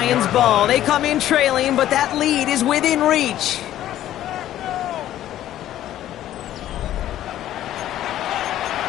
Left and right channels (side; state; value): right; quieter; 12.7 dB